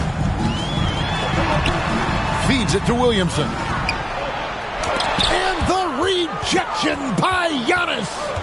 Feeds it to Williamson. And the rejection by Giannis.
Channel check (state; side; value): identical; both; correlation 1.00